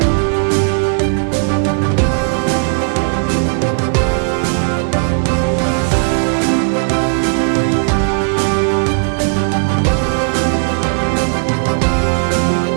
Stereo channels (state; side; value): silent; left; digital silence